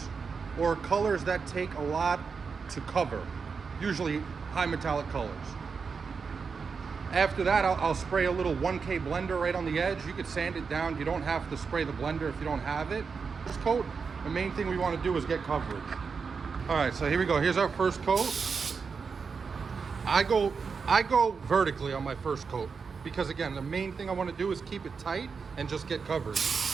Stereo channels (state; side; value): quieter; left; 5.4 dB